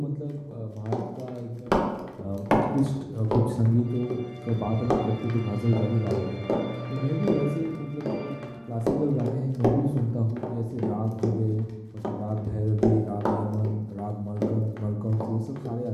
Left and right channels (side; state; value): both; identical; correlation 1.00